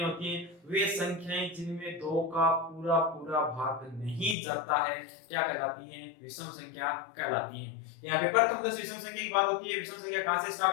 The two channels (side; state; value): right; drops out; at 4.4 s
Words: होती हैं, वे संख्याएं जिनमें 2 का पूरा पूरा भाग नहीं जाता है, क्या कहलाती हैं, विषम संख्या कहलाती हैं। यहाँ पे प्रथम 10 विषम संख्या की बात होती है। विषम संख्या कहां से